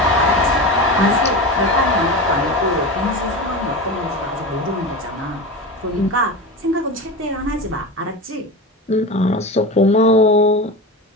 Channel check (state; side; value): normal; both; correlation 0.25